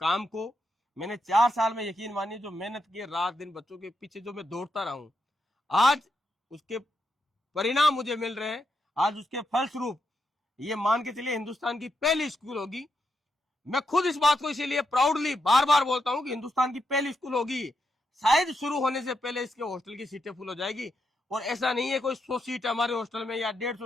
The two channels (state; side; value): normal; both; correlation 0.83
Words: को। मैंने 4 साल में, यकीन मानिए, जो मेहनत की है रात दिन बच्चों के पीछे, जो मैं दौड़ता रहा हूं, आज उसके परिणाम मुझे मिल रहे हैं। आज उसके फलस्वरूप ये मान के चलिए हिंदुस्तान की पहली स्कूल होगी। मैं खुद इस बात को इसीलिए प्राउडली बार बार बोलता हूं कि हिंदुस्तान की पहली स्कूल होगी। शायद शुरू होने से पहले इसके हॉस्टल की सीटें फुल हो जाएगी। और ऐसा नहीं है कोई 100 सीट है हमारे हॉस्टल में या